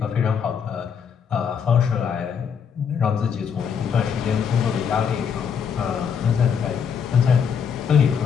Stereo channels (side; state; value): right; quieter; 7.1 dB